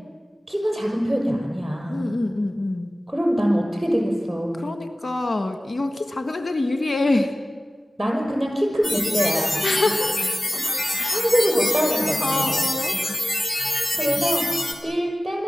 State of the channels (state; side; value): normal; both; correlation 0.96